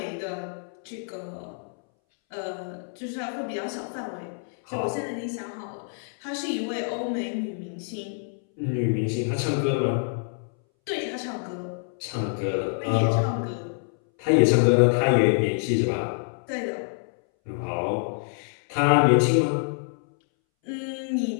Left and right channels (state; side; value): silent; right; 61 dB below the other